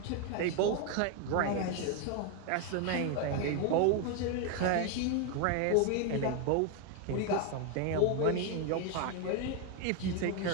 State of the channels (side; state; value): both; different; correlation 0.01